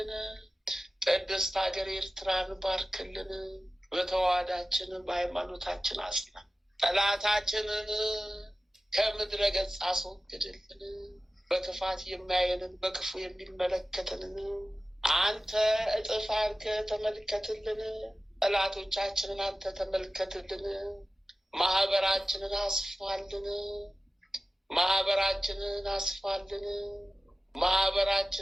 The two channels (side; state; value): both; normal; correlation 0.95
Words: ቅድስት ሀገር ኤርትራን ባርክልን። በተዋህዳችን በሃይማኖታችን አጽና። ጠላታችንን ከምድረ ገጽ አስወግድልን። በክፋት የሚያየንን በክፉ የሚመለከትንን አንተ እጥፍ አድርገህ ተመልከትልን። ጠላቶቻችንን አንተ ተመልከትልን። ማህበራችንን አስፋልን። ማህበራችንን አስፋልን።